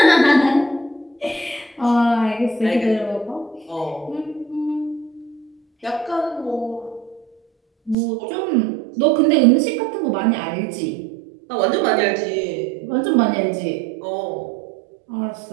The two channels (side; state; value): left; drops out; at 8.0 s